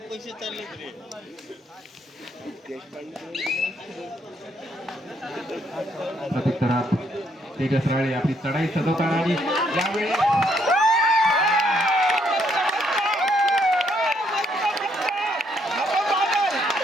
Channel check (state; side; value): normal; both; correlation 0.72